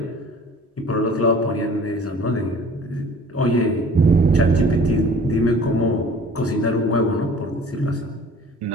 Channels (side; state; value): both; normal; correlation 0.48